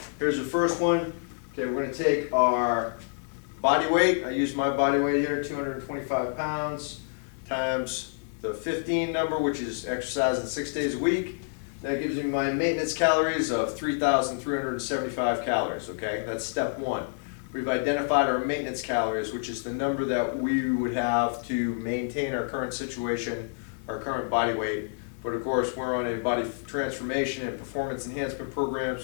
Here's the first one. Okay, we're going to take our body weight. I use my body weight here, 225 pounds. Times the 15 number, which is exercising 6 days a week. That gives me my maintenance calories of 3,375 calories, okay? That's step 1. We've identified our maintenance calories, which is the number that we would have to maintain our current situation, our current body weight. But of course, we're on a body transformation and performance enhancement program,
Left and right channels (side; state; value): right; silent; 59 dB below the other